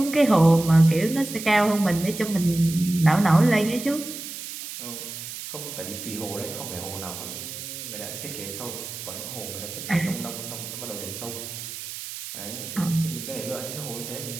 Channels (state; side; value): noise; right; hiss, 9 dB below the sound